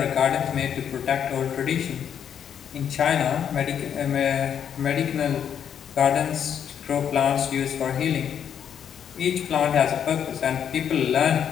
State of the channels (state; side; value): quieter; right; 8.6 dB